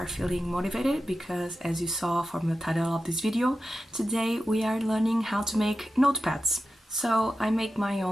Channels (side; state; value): both; normal; correlation 0.92